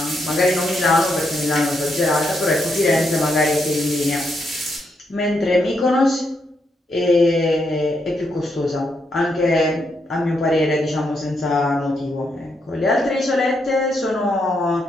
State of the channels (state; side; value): normal; both; correlation 0.79